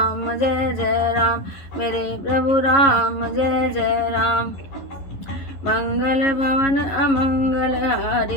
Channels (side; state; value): right; late; 11 ms